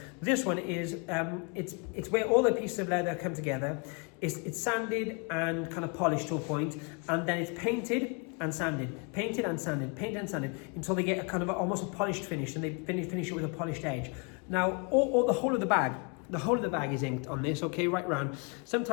This one is, it's where all the pieces of leather come together. It's sanded and kind of polished to a point, and then it's painted and sanded, until they get a kind of almost a polished finish, and they finish it with a polished edge. Now, all the whole of the bag is inked on this, okay, right round.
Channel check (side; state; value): right; quieter; 34.7 dB